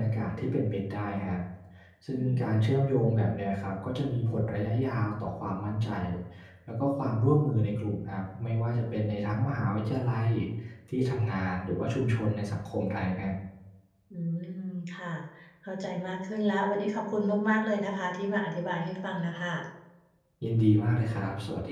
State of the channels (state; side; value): identical; both; correlation 1.00